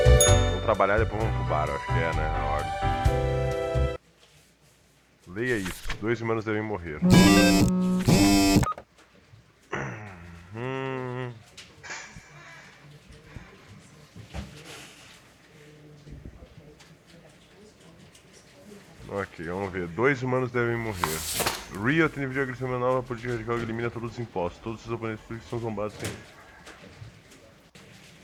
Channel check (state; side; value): identical; both; correlation 1.00